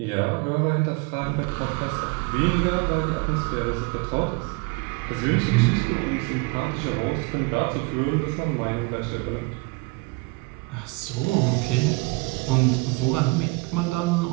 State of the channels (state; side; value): quieter; left; 26.8 dB